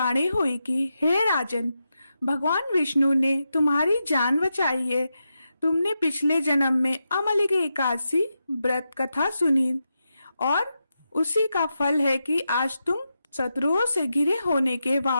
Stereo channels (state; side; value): inverted; both; correlation -0.87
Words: हुई कि हे राजन, भगवान विष्णु ने तुम्हारी जान बचाई है। तुमने पिछले जन्म में अमल की एकादशी व्रत कथा सुनी और उसी का फल है कि आज तुम शत्रुओं से घिरे होने के